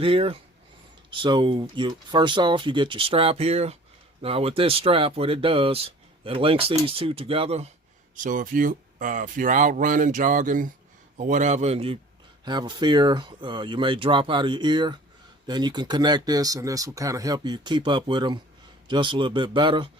here. So first off, you get your strap here. Now with this strap, what it does, it links these two together. So if you're out running, jogging, or whatever, and you have a fear you may drop out of your ear, then you can connect this, and this will kind of help you keep up with them just a little bit better.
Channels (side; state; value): both; normal; correlation 0.47